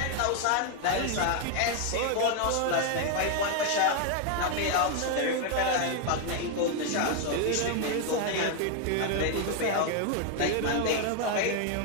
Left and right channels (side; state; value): both; different; correlation 0.01